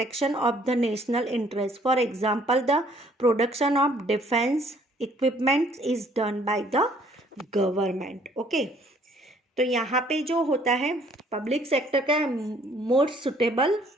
of the national interest. For example, the production of defense equipment is done by the government. Okay, तो यहाँ पे जो होता है public sector का more suitable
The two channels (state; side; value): normal; both; correlation 0.61